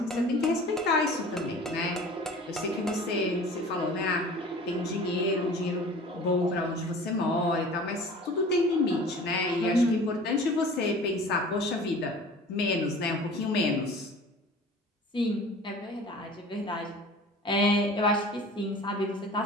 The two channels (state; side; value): normal; both; correlation 0.43